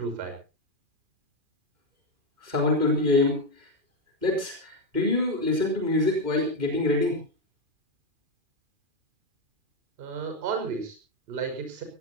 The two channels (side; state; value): left; late; 2.4 ms